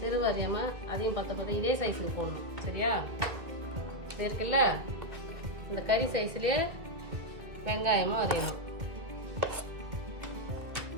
அறியாமல் அதையும் பத்த இதே சைஸுக்கு போடணும். சரியா? இருக்குல்ல, இந்த கறி சைஸ்லேயே வெங்காயமும் அறியணும்.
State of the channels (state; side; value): late; left; 2.2 ms